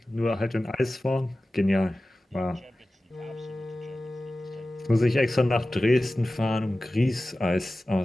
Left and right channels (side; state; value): both; normal; correlation 0.96